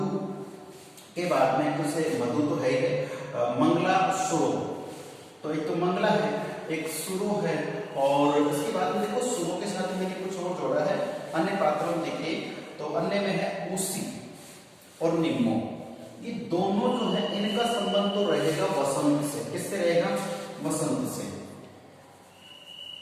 के बाद में, कुछ मधु तो है ही, मंगला सुरो। तो एक तो मंगला है, एक सुरो है, और उसके बाद में देखो सुरो के साथ मैंने कुछ और जोड़ा है अन्य पात्रों में। देखिए तो अन्य में है उसी और निम्मो। ये दोनों जो है इनका संबंध तो रहेगा वसंत से। किससे रहेगा? वसंत से।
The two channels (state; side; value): identical; both; correlation 1.00